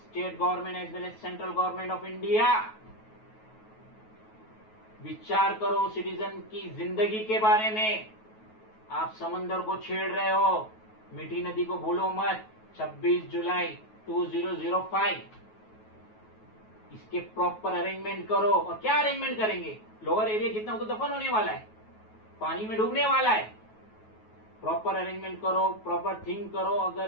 government as well as central government of India, विचार करो सिटीजन की जिंदगी के बारे में। आप समंदर को छेड़ रहे हो, मीठी नदी को भूलो मत। 26 जुलाई 2005 इसके प्रॉपर अरेंजमेंट करो। और क्या अरेंजमेंट करेंगे, लोअर एरिया जितना वो तो दफन होने वाला है, पानी में डूबने वाला है। प्रॉपर अरेंजमेंट करो, प्रॉपर थिंक करो।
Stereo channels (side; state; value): right; late; 9.3 ms